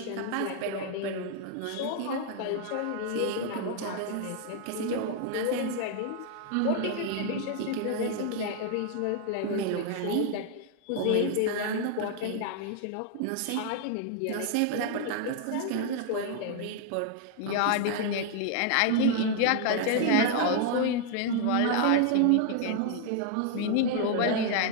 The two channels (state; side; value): different; both; correlation 0.00